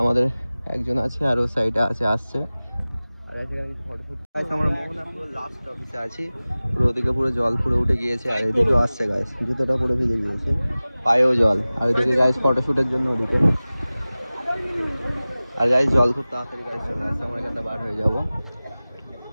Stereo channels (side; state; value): both; inverted; correlation -0.98